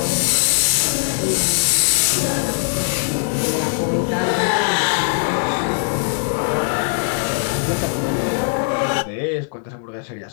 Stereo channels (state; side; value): silent; right; 66 dB below the other